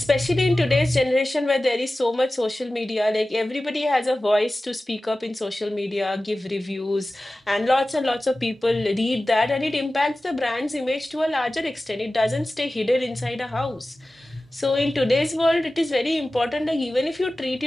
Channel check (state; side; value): normal; both; correlation 0.96